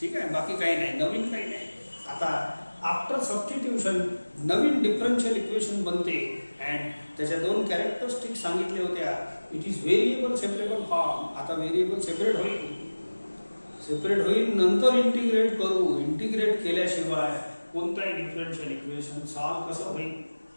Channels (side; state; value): both; inverted; correlation -1.00